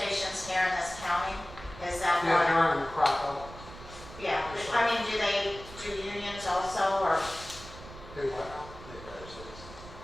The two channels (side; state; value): right; noise; rumble, 15 dB below the sound